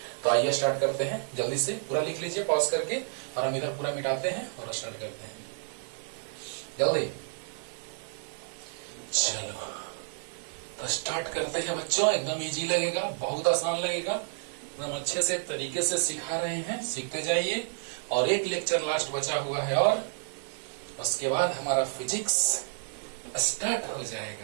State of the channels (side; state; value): left; silent; 58 dB below the other